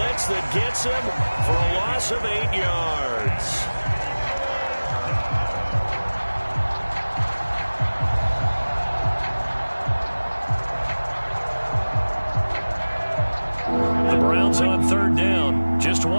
that gets him for a loss of 8 yards. The Browns on 3rd down. Just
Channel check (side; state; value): both; inverted; correlation -1.00